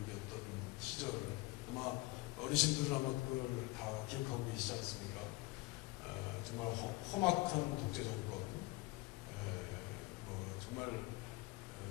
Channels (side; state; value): right; quieter; 21.4 dB